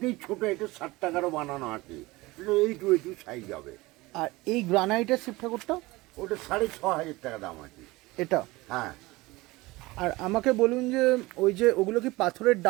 ছোট এটা 60 টাকারও বানানো আছে, এইটু সাইজ হবে। আর এই গ্রানাইটের শিব ঠাকুরটা? ওটা 6500 টাকা দাম আছে এটা? হ্যাঁ। আর আমাকে বলুন যে ওই যে ওগুলো কি পাথরের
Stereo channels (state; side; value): quieter; left; 21.1 dB